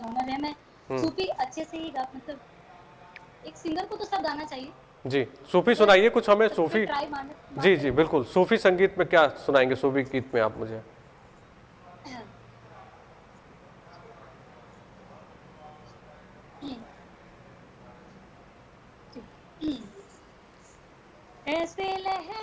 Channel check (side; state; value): both; identical; correlation 1.00